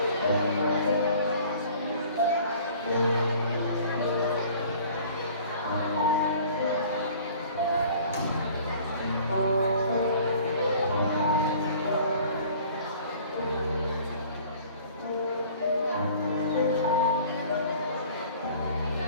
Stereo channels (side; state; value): both; inverted; correlation -0.50